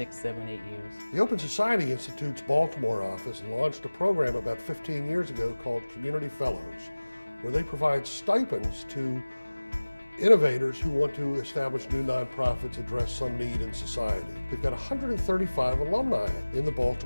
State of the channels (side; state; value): both; inverted; correlation -1.00